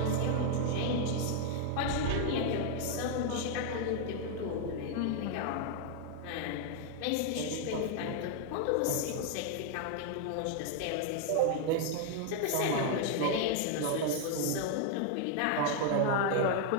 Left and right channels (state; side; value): different; both; correlation 0.00